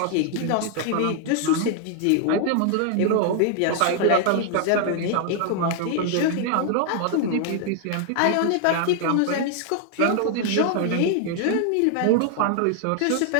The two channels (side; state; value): both; different; correlation 0.00